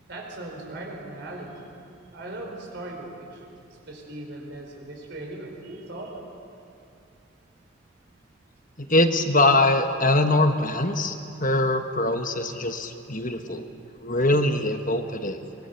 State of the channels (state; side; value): normal; both; correlation 0.17